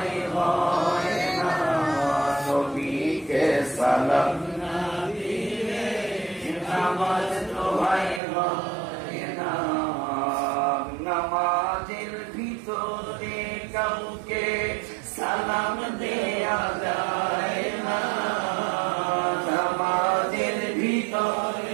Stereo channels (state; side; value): drops out; left; at 8.2 s